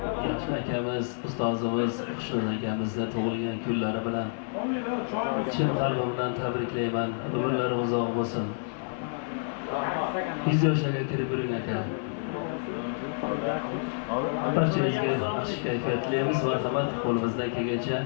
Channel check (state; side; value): silent; right; 59 dB below the other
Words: Yaxshi akamiz, ustozimiz Xushnud akamizni tug'ilgan kunlari bilan chin qalbimdan tabriklayman. Umrlari uzoq bo'lsin. 100 yoshga kirib yuring aka. Barchangizga yaxshi kayfiyatlaymiz. Marhamat, qo'limizdan kelgancha